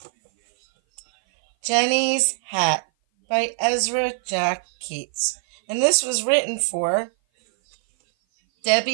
Jenny's Hat by Ezra Jack Keats. And this was written for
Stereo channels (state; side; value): silent; left; 58 dB below the other